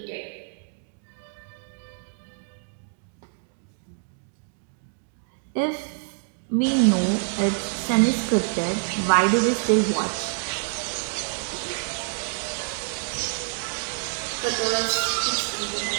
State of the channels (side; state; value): left; silent; digital silence